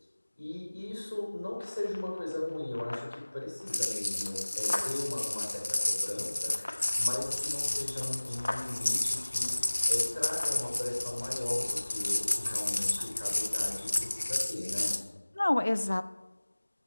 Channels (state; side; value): inverted; both; correlation -1.00